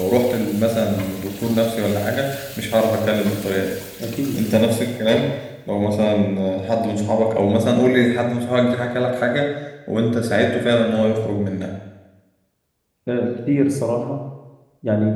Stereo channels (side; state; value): both; identical; correlation 1.00